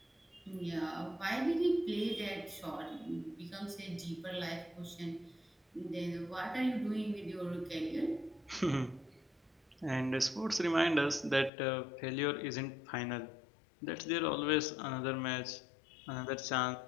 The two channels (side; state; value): right; drops out; at 11.5 s